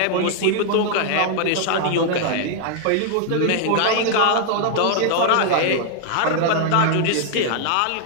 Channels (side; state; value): both; different; correlation 0.00